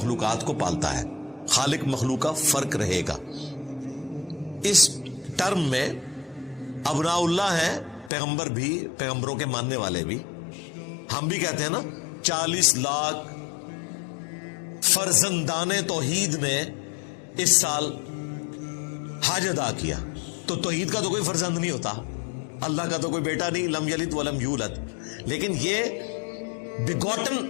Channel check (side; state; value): right; drops out; at 8.1 s